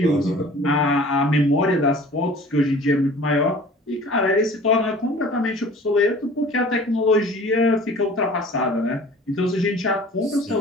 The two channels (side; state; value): both; normal; correlation 0.46